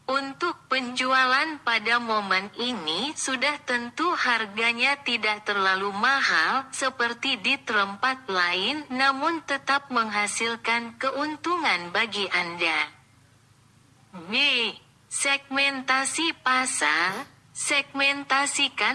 Untuk penjualan pada momen ini sudah tentu harganya tidak terlalu mahal seperti di tempat lain, namun tetap menghasilkan keuntungan bagi Anda. B. Segmentasi pasar.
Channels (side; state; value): both; identical; correlation 1.00